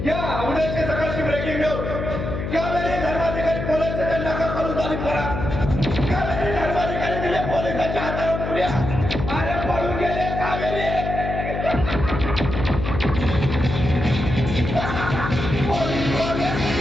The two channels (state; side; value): noise; left; hum, 4 dB below the sound